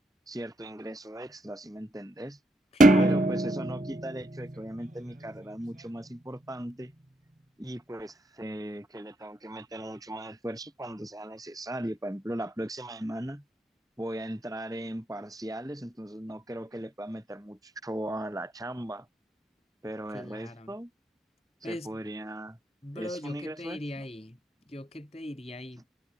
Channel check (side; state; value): both; normal; correlation 0.78